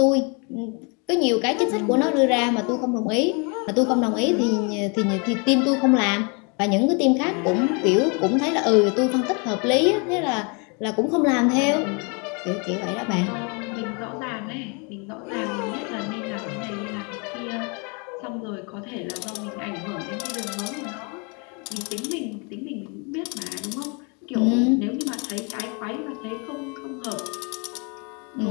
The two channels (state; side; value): quieter; right; 33.6 dB